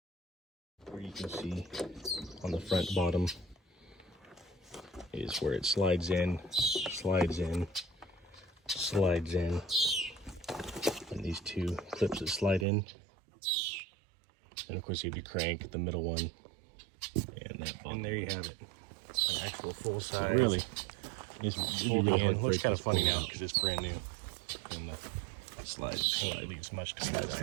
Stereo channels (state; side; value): drops out; left; at 12.7 s